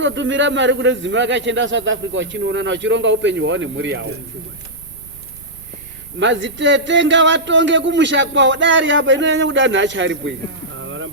mari kune dzimwe vakachienda south africa vachinoonana vachironga upenyu hwavo nemhuri yavo madzitete ngavatonge kumusha kwavo dari apa inonyanya kuda nhacha aripo ini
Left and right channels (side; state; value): both; normal; correlation -0.12